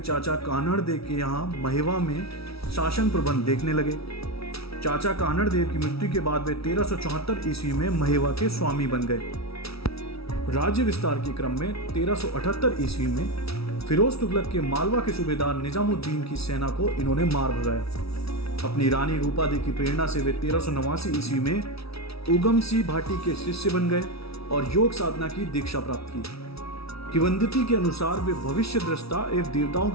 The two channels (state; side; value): late; right; 0.76 ms